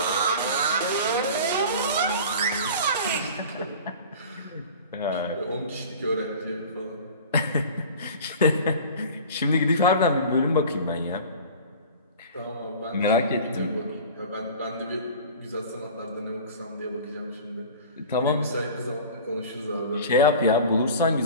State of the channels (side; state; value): both; inverted; correlation -0.39